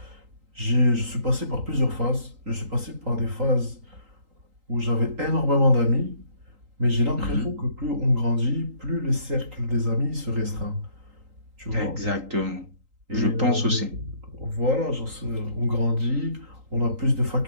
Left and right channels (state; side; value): late; left; 3.8 ms